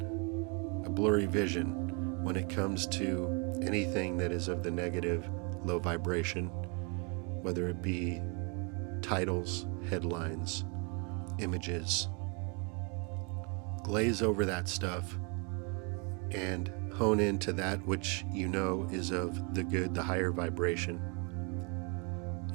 blurry vision when it comes to anything that is of the negative, low vibration, whether it be titles, headlines, images. Glaze over that stuff and hone into that which you know is of the good, the higher vibration.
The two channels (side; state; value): left; quieter; 34.3 dB